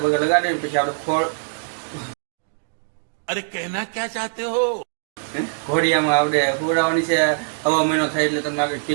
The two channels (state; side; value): silent; left; digital silence